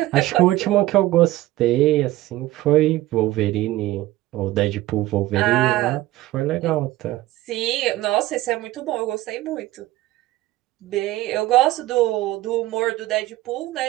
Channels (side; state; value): left; quieter; 16.6 dB